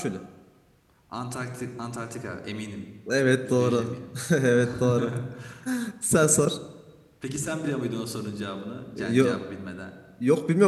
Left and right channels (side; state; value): both; identical; correlation 1.00